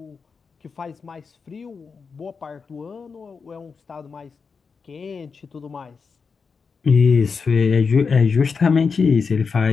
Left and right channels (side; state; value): right; quieter; 5.3 dB